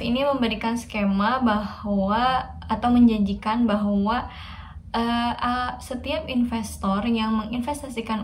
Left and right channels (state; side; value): identical; both; correlation 1.00